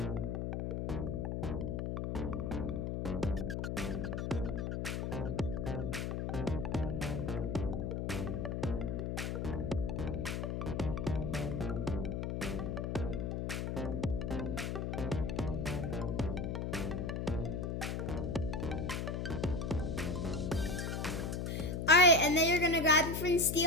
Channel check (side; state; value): left; noise; hum, 2 dB below the sound